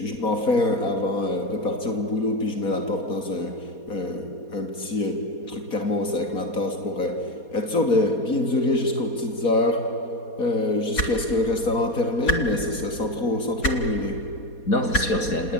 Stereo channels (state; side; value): late; right; 4.2 ms